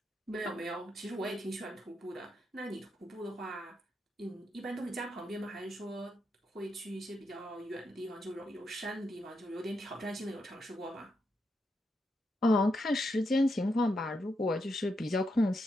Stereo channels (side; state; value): both; normal; correlation 0.82